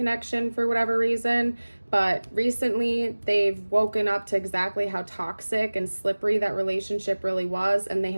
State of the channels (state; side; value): inverted; both; correlation -1.00